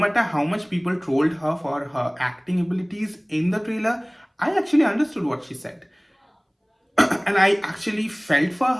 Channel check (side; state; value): both; identical; correlation 1.00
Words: how much people trolled her for her acting abilities in the trailer, I actually understood what she said and I actually felt for